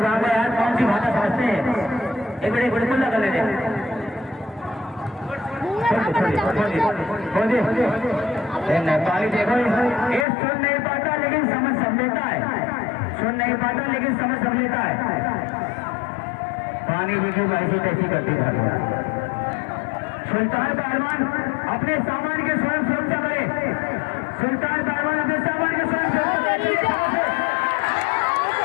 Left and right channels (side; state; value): right; drops out; at 10.2 s